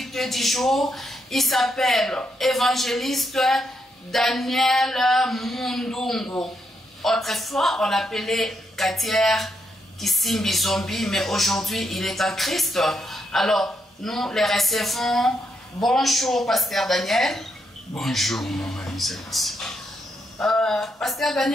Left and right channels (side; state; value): both; normal; correlation 0.79